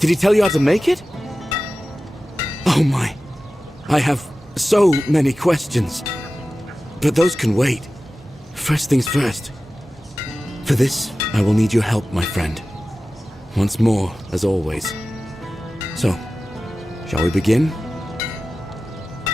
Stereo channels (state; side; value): normal; both; correlation 0.95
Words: Did he tell you how to make it? Oh my. I have so many questions. But those can wait. First things first. For this, I will need your help, my friend. Once more, as always. So, shall we begin?